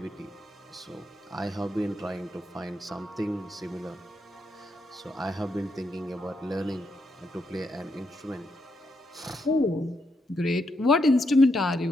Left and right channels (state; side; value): normal; both; correlation 0.80